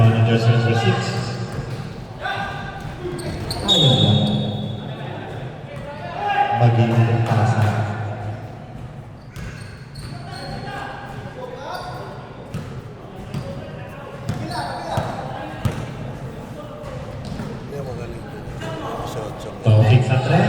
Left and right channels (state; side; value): identical; both; correlation 1.00